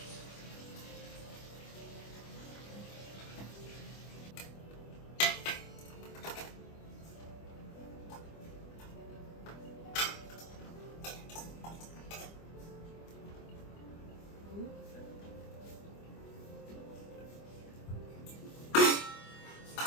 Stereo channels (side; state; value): right; late; 25 ms